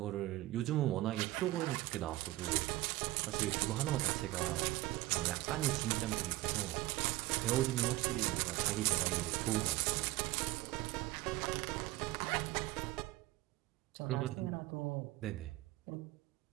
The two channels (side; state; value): left; quieter; 18.1 dB